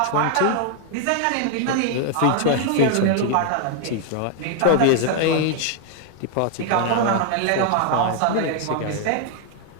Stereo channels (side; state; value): both; different; correlation 0.00